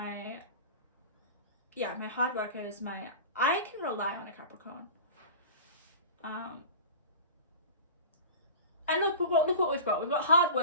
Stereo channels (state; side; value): inverted; both; correlation -0.35